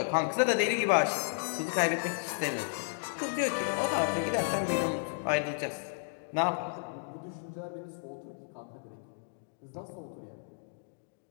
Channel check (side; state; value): right; silent; digital silence